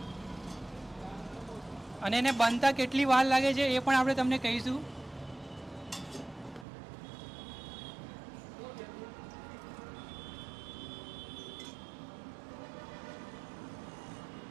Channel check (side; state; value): left; drops out; at 6.7 s